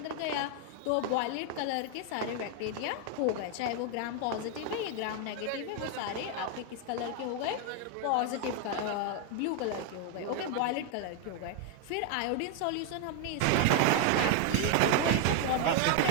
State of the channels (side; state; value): both; different; correlation 0.01